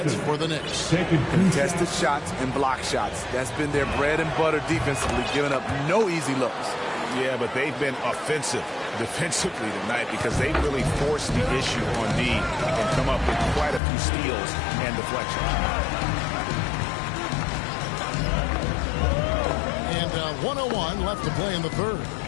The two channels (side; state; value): right; drops out; at 13.8 s